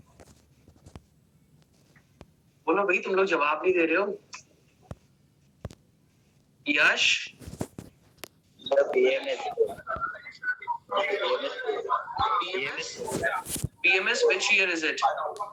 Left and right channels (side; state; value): both; identical; correlation 1.00